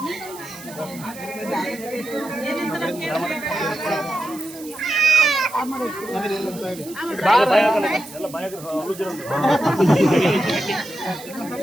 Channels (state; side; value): noise; right; hiss, 17 dB below the sound